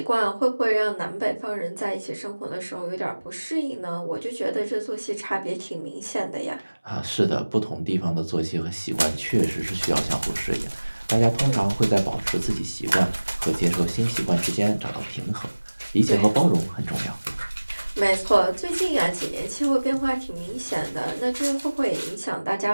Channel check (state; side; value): inverted; both; correlation -1.00